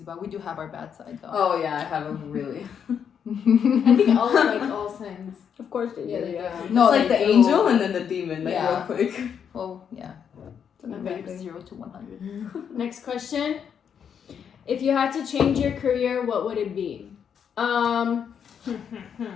We do have our bad side though. Oh yeah, I have a really. I think all signs. Of course they do. Yeah, they do. No, it's like they the do. angel and then the demon. Like Yeah. real quick. Well, yeah. Okay. 0 to 100. Next question. If you had to change your career, what would it be? I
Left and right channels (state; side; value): quieter; right; 7.7 dB